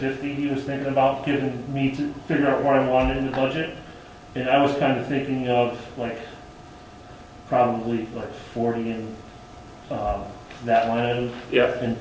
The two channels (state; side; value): identical; both; correlation 1.00